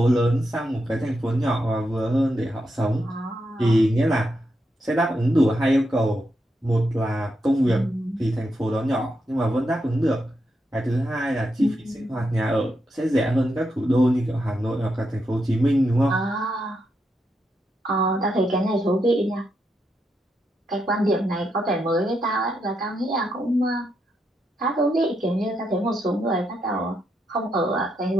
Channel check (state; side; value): normal; both; correlation 0.82